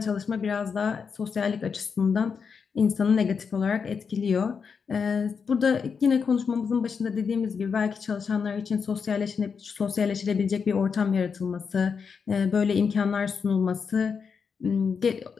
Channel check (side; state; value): right; quieter; 6.0 dB